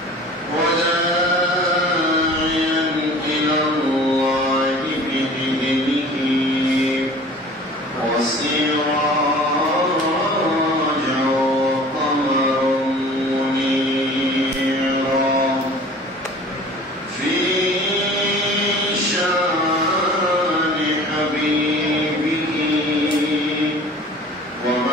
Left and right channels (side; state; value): both; normal; correlation 0.45